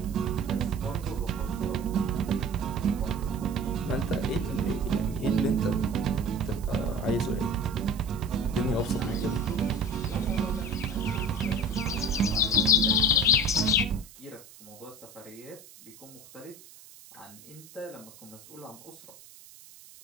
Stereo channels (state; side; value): noise; right; hiss, 20 dB below the sound